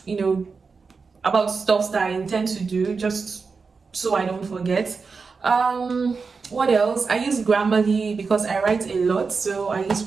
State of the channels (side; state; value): left; quieter; 4.8 dB